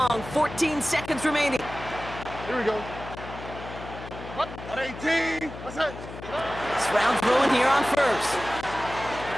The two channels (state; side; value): noise; left; hum, 12 dB below the sound